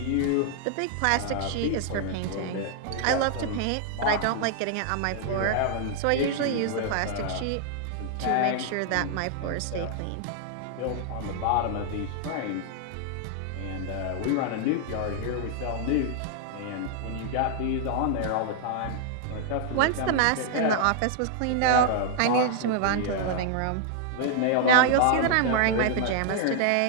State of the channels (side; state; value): both; different; correlation -0.01